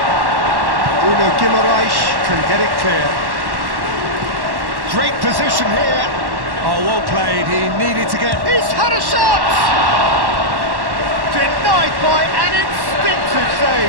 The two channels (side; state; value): left; late; 1.1 ms